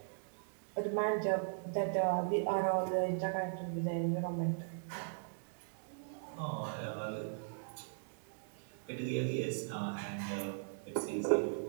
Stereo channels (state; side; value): silent; left; digital silence